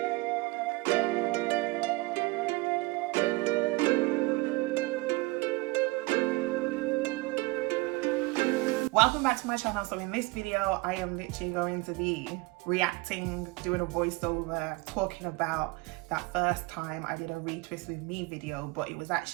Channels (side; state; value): left; quieter; 23.5 dB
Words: Welcome back to my channel. So in this video, I am literally going to be reacting, doing a voiceover, talking about that first time I did a retwist with me video, but it was